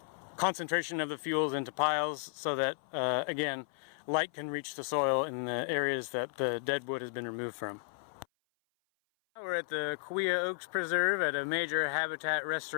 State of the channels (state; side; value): silent; right; 55 dB below the other